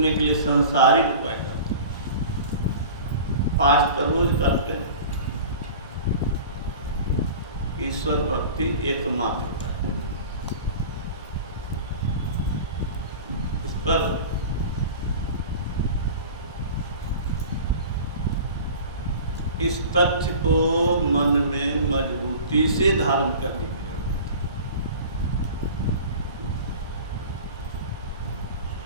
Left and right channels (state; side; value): inverted; both; correlation -0.38